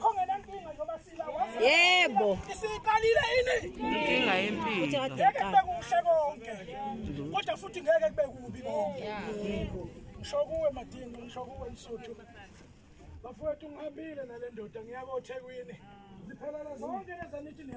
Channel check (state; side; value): identical; both; correlation 1.00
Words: ngenankinga njengoba sila wazi. Yebo. Isiqalile ini? Inkinga yempilo. Ngeke kube kuhle konke. Kodwa futhi ngeke kube kubi konke. Ngisho kuwe Madingo, ngisho kuwe Msuthu. Bafowethu ngihambile nale ndoda ngiyako eThekwini. Ziphelele zonke lezi nithi